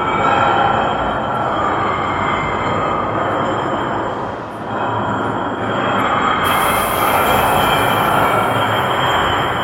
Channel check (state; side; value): identical; both; correlation 1.00